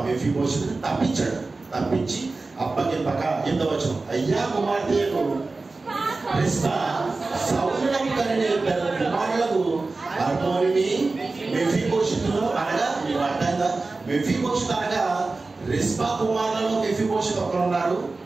మెఫీబోషెతును తప్పించాడు. తప్పించి అప్పగింపక ఎంతవచనం, అయ్యా కుమార్తెకు రిస్పా సౌలునకు కనిన 2 కుమారులకు అర్మోనిని మెఫీబోషెతును అనగా, మీకు అర్థంగా మెఫీబోషెతు అనగా రిస్పా కుమారులలో మెఫీబోషెతు ఒకరున్నారు,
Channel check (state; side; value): quieter; left; 3.6 dB